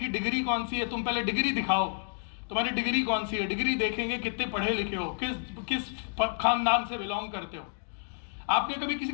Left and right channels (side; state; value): right; silent; 58 dB below the other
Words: डिग्री कौन सी है, तुम पहले डिग्री दिखाओ, तुम्हारी डिग्री कौन सी है, डिग्री देखेंगे कितने पढ़े लिखे हो, किस खानदान से बिलोंग करते हो। आपने कभी किसी